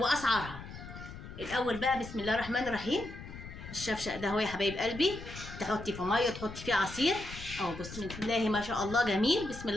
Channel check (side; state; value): left; noise; rumble, 12 dB below the sound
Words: الاول بقى بسم الله الرحمن الرحيم. الشفشق ده هو يا حبايب قلبي، تحطي في ميه تحطي فيه عصير اهو. بسم الله ما شاء الله جميل، بسم